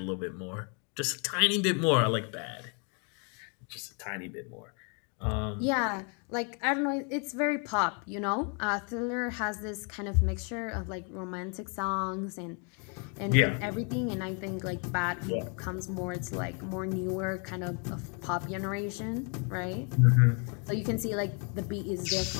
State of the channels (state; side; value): quieter; right; 37.2 dB